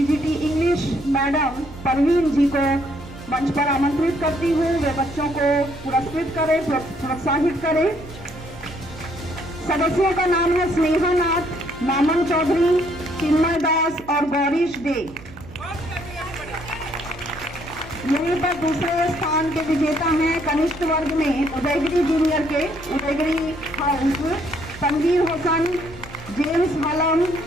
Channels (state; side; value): noise; right; hum, 19 dB below the sound